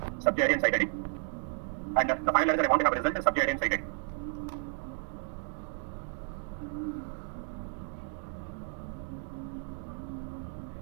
subject ID and site ID. And the final letter I want to have a result is subject ID and site ID.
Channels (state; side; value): silent; left; 56 dB below the other